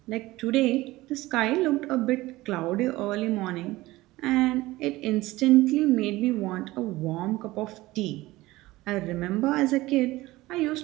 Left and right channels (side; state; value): left; quieter; 18.6 dB